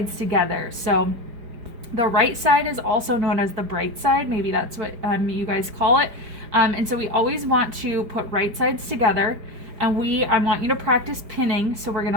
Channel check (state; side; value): late; left; 4.9 ms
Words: together. So the right side is also known as the bright side. Maybe that's what you guys call it. And so we always want to put right sides together. And I want you to practice pinning. So we're